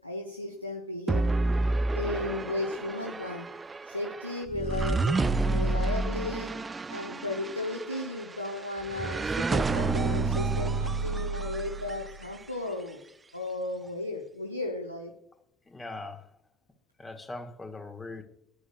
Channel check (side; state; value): both; normal; correlation 0.44